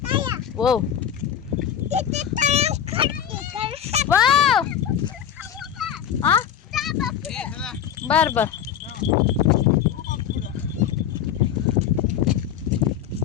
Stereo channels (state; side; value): quieter; right; 9.3 dB